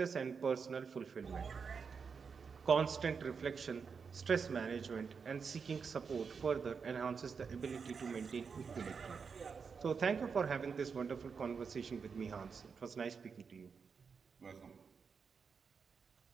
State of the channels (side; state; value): left; quieter; 5.7 dB